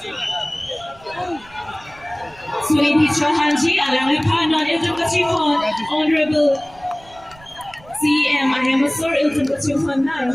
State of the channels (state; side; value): noise; right; rumble, 25 dB below the sound